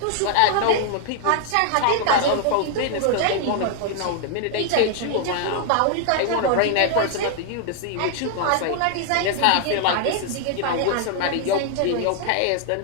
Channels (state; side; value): different; both; correlation 0.00